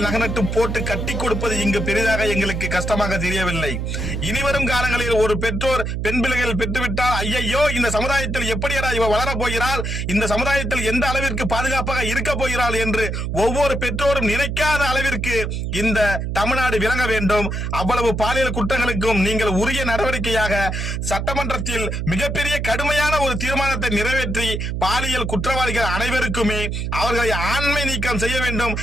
நகனட்டு போட்டு கட்டி கொடுப்பது இங்கு பெரிதாக எங்களுக்கு கஷ்டமாக தெரியவில்லை. இனிவரும் காலங்களில் ஒரு பெற்றோர் பெண் பிள்ளைகள் பெற்றுவிட்டால் ஐயையோ இந்த சமுதாயத்தில் எப்படியடா இவ வளரப் போகிறாள், இந்த சமுதாயத்தில் எந்த அளவிற்கு பாதுகாப்பாக இருக்க போகிறாள் என்று ஒவ்வொரு பெற்றோரும் நினைக்காத அளவிற்கு இந்த தமிழ்நாடு விளங்க வேண்டும். அவ்வளவு பாலியல் குற்றங்களுக்கும் நீங்கள் உரிய நடவடிக்கையாக சட்டமன்றத்தில் மிகப்பெரிய கடுமையான ஒரு தீர்மானத்தை நிறைவேற்றி பாலியல் குற்றவாளிகள் அனைவருக்குமே அவர்களை ஆண்மை நீக்கம் செய்ய வேண்டும்,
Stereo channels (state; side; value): noise; right; hum, 2 dB below the sound